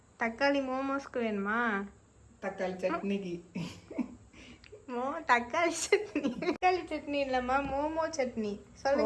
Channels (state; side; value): identical; both; correlation 1.00